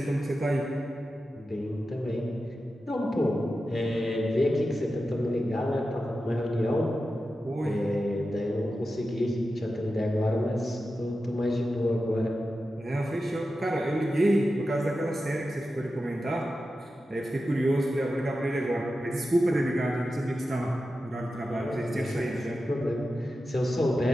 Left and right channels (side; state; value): both; normal; correlation 0.92